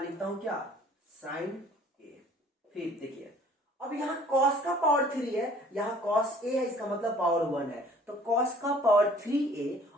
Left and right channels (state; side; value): normal; both; correlation 0.53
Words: लिखता हूं क्या साइन ए। फिर देखिए अब यहां कॉस का पावर 3 है, यहां कॉस ए है इसका मतलब पावर 1 है, तो कॉस का पावर 3a